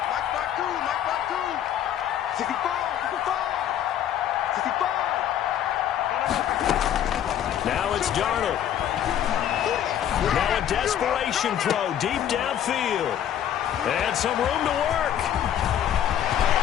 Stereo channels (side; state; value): right; quieter; 10.3 dB